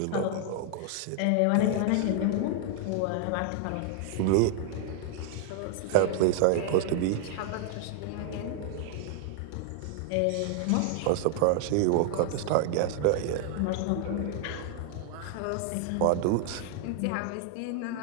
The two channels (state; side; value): different; both; correlation 0.00